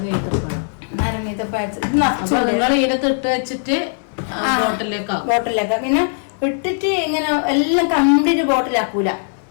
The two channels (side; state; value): right; silent; digital silence